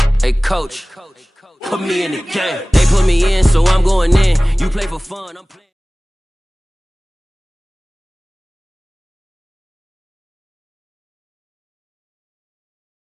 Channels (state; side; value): normal; both; correlation 0.98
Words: Hey, coach, put me in the game. They put me in, so I'm going in. You play for fun, I'm playing.